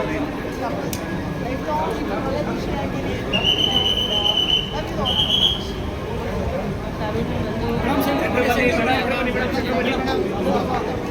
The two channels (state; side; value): identical; both; correlation 1.00